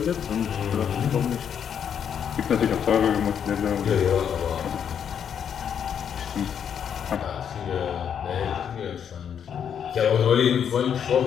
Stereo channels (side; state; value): right; quieter; 8.2 dB